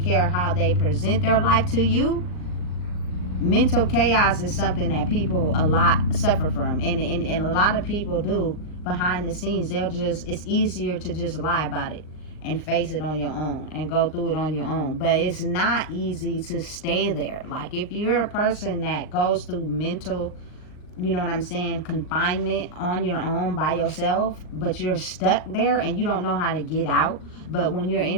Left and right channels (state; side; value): late; right; 39 ms